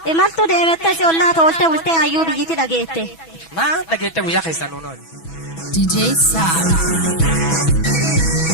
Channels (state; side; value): late; right; 6.1 ms